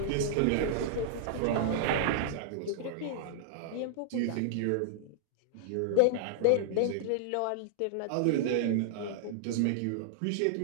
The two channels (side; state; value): both; different; correlation -0.01